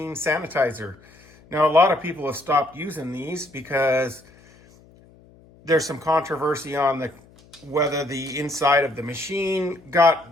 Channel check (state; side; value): noise; left; hum, 27 dB below the sound